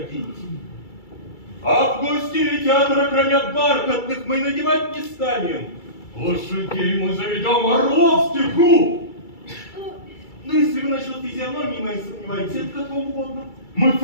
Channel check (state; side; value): late; right; 2.3 ms